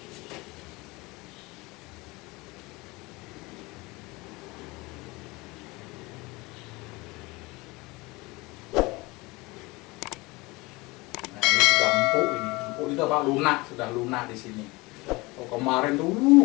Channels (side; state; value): right; quieter; 23.5 dB